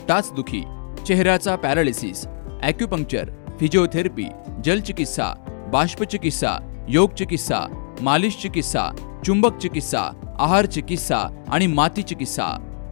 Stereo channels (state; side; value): silent; right; digital silence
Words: टाचदुखी, चेहऱ्याचा पॅरालिसिस, ॲक्युपंक्चर, फिजिओथेरपी, जलचिकित्सा, बाष्पचिकित्सा, योग चिकित्सा, मालिश चिकित्सा, चुंबक चिकित्सा, आहार चिकित्सा आणि माती चिकित्सा.